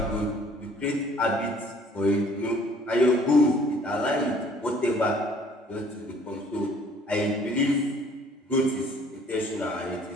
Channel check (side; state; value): both; normal; correlation 0.57